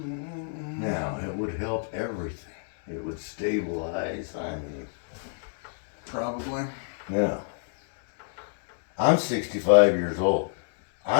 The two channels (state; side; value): silent; right; digital silence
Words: it would help everything. It would stabilize, I mean. Probably. Yeah. I'm 65 years old.